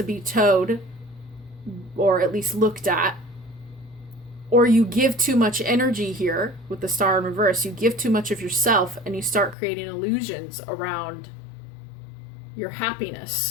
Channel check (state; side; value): drops out; right; at 9.6 s